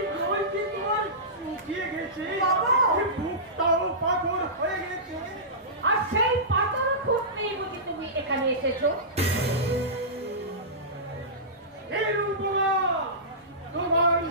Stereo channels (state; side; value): normal; both; correlation -0.19